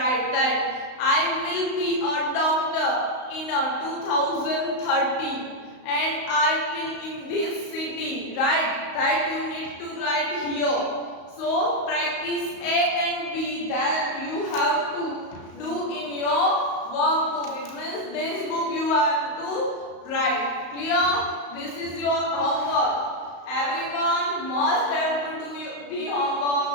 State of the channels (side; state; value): right; late; 35 ms